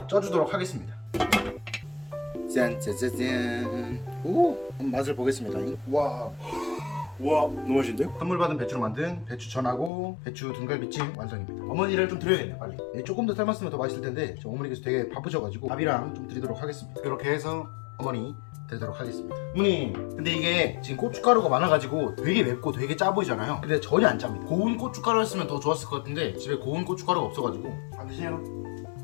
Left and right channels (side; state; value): right; drops out; at 9.9 s